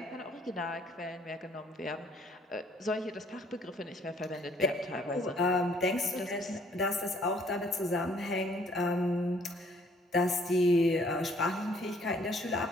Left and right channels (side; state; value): both; normal; correlation 0.62